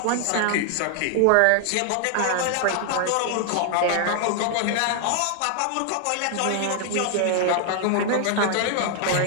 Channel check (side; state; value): both; different; correlation 0.00